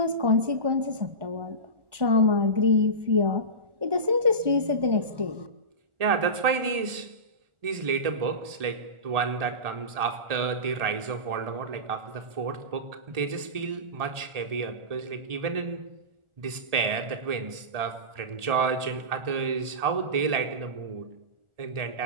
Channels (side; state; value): left; late; 1.8 ms